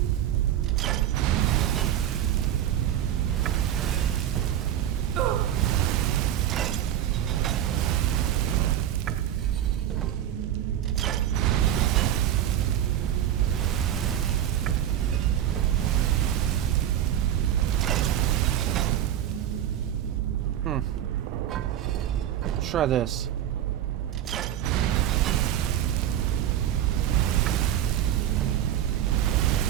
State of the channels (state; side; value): quieter; left; 11.2 dB